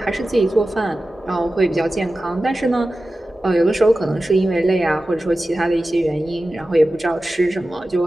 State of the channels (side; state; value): both; normal; correlation 0.94